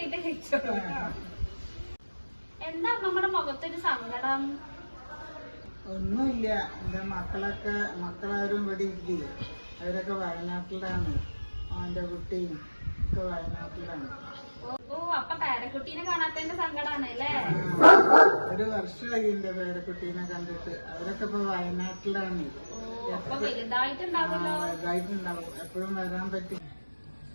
കഴിച്ചോളൂ. എന്താ അമ്മമ്മയുടെ മുഖത്തൊരു സങ്കടം? ഒന്നുമില്ല. എന്റെ മക്കളാരും ഇവിടെ ഇല്ലേ, അവരൊക്കെ വയനാട്ടിലാണ്. അവന്റെ കുട്ടിയും ഒക്കെ വയനാട്ടിലാണ്. ഓ അപ്പൊ പേരക്കുട്ടീനെ കാണാത്തതിന്റെ സങ്കടാണ് അല്ലേ? ഒരു വർഷമായി എന്റെ പേരക്കുട്ടീനെ കണ്ടിട്ട്. അവരൊക്കെ ഇപ്പൊ വയനാട്ടിലാണ്. അപ്പൊ വലുതായിട്ടുണ്ടാവുമല്ലോ. വലുതായിട്ടുണ്ടാവും, എപ്പോഴും വരാൻ പറ്റും.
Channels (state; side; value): inverted; both; correlation -1.00